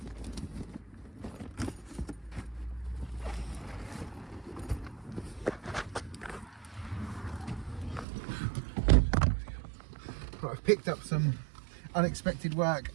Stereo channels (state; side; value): drops out; left; at 8.1 s